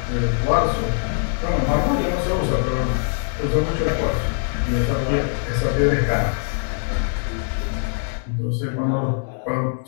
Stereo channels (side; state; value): right; silent; 64 dB below the other